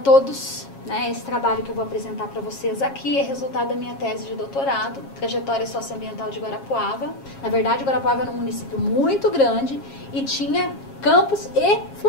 Esse trabalho que eu vou apresentar para vocês aqui é resultado da minha tese de doutorado, Trajetória Socioambiental de Guarapuava. Na verdade, Guarapuava era um município muito grande e tinha campos e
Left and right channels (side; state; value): right; late; 7.3 ms